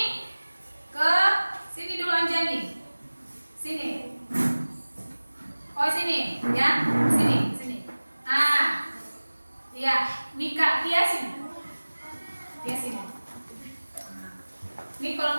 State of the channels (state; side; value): inverted; both; correlation -1.00